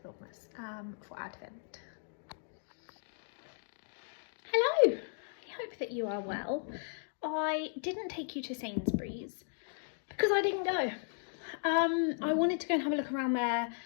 for Advent. Hello, I hope that you are well. I didn't take you to Sainsbury's because I didn't go. I wanted to go and have a look around there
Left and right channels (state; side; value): silent; right; digital silence